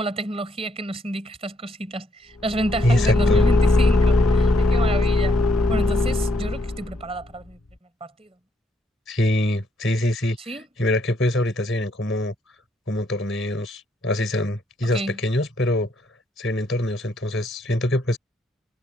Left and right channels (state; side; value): normal; both; correlation 0.73